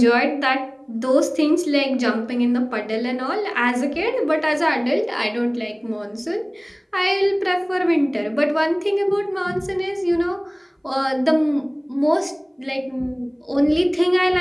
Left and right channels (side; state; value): both; identical; correlation 1.00